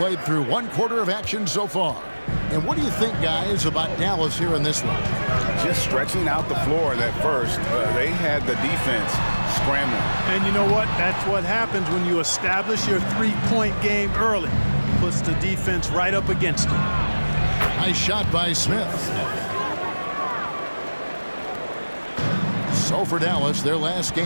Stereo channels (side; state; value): both; inverted; correlation -1.00